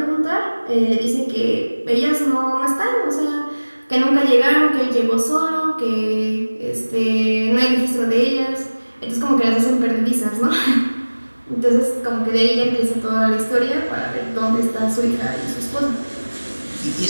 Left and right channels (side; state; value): both; inverted; correlation -1.00